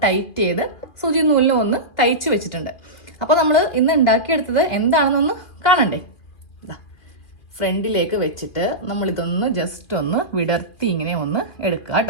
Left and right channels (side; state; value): right; late; 2.4 ms